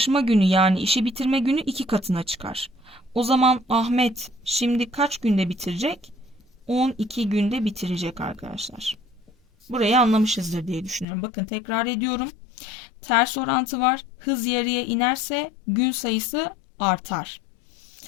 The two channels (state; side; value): drops out; right; at 11.1 s